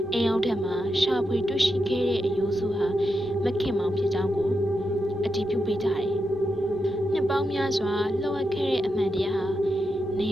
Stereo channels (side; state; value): both; normal; correlation 0.86